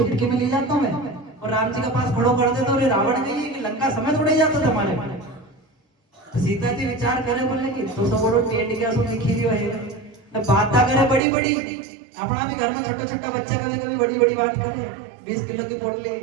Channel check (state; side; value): drops out; left; at 11.2 s